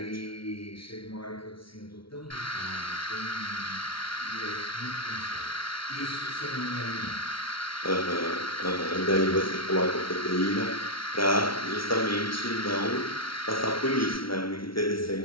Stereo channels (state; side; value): late; right; 0.74 ms